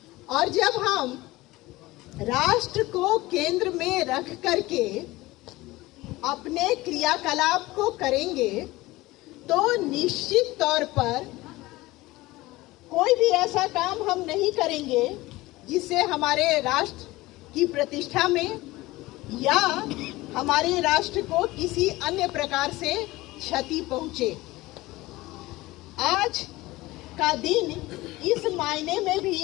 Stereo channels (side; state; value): right; quieter; 19.4 dB